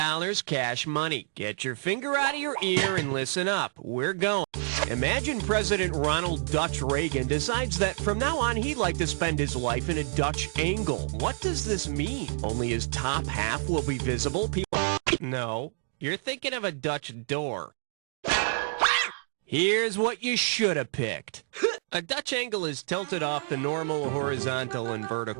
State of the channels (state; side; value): silent; left; 59 dB below the other